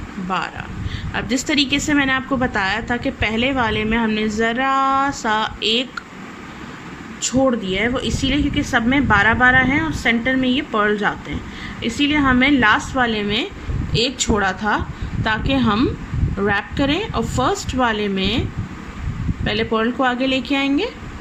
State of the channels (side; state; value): both; identical; correlation 1.00